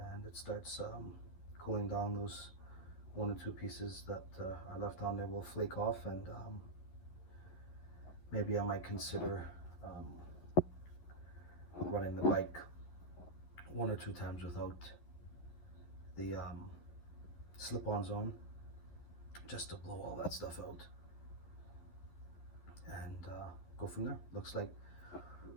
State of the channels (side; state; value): right; late; 12 ms